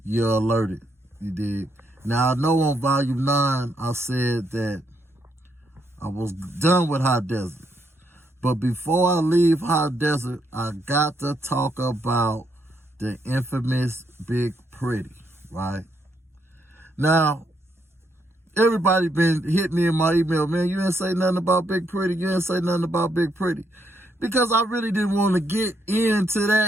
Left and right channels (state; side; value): normal; both; correlation 0.76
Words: you're alerted. You dig? Now, I know on Volume 9, I said that I was done with Hot Desert. But before I leave Hot Desert, I got to talk about the infamous Big Pretty, right? Now, everybody been hit me in my email, man, you didn't say nothing about Big Pretty. You didn't say nothing about Big Pretty. Because I really didn't want to get into